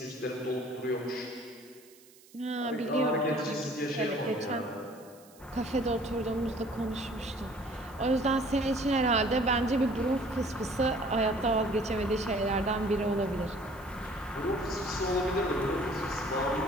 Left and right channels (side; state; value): right; noise; hiss, 25 dB below the sound